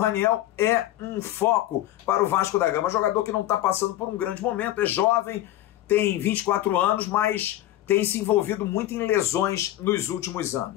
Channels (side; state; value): right; quieter; 14.1 dB